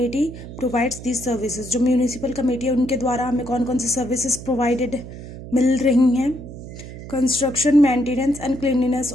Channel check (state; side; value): noise; right; hum, 12 dB below the sound